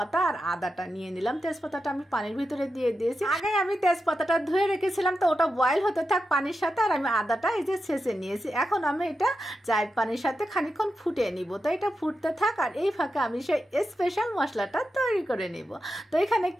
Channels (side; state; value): both; normal; correlation 0.89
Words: আর আদাটা নিয়ে নিলাম। তেজপাতাটা আমি পানির ভিতরে দিয়ে দিয়েছি। আগে আমি তেজপাতাটা ধুয়ে রেখেছিলাম, তো ওটা বয়েল হতে থাক পানির সাথে। আর আমি আদাটা এই যে ছেঁচে নিয়েছি। এখন আমি এটা চায়ের পানির সাথে খানিকক্ষণ ফুটিয়ে নিব। তো এটা ফুটতে থাক, আর এই ফাঁকে আমি সেই স্পেশাল মশলাটা তৈরি করে নিব। তো এখানে